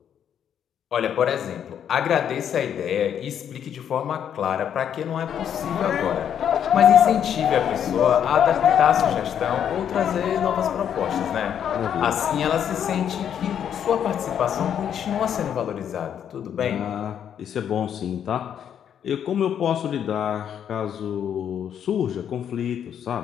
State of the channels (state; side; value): quieter; right; 9.0 dB